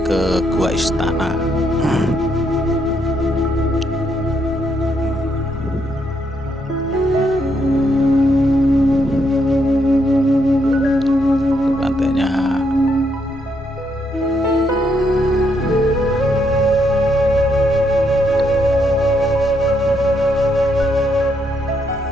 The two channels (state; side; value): normal; both; correlation 0.76